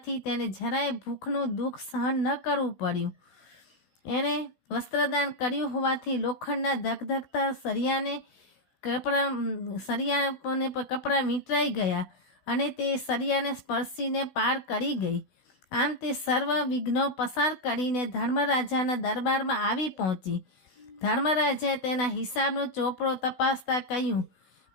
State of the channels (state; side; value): late; right; 16 ms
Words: તેને જરાય ભૂખનું દુઃખ સહન ન કરવું પડ્યું. એણે વસ્ત્રદાન કર્યું હોવાથી લોખંડના ધગધગતા સરિયાને કપડાં વીંટરાઈ ગયા અને તે સરિયાને સ્પર્શીને પાર કરી ગઈ. આમ તે સર્વ વિઘ્નો પસાર કરીને ધર્મરાજાના દરબારમાં આવી પહોંચી. ધર્મરાજાએ તેના હિસાબનો ચોપડો તપાસતા કહ્યું,